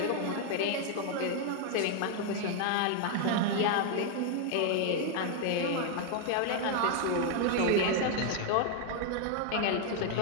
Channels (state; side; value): different; both; correlation 0.00